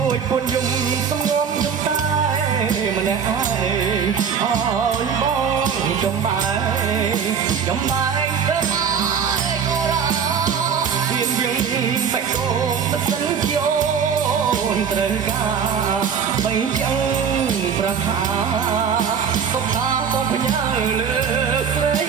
ួចពុនយំសំងំយំតែម្នាក់ឯងអើយបងចំបែងទៅទៀនយើងបាច់កោបសិនយោនត្រូវការបីចឹងប្រាថ្នាសុខថាបងផ្ញើលើស្រី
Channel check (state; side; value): quieter; left; 7.0 dB